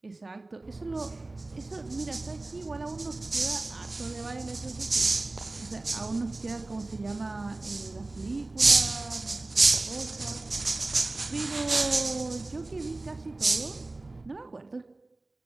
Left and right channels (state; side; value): quieter; left; 3.0 dB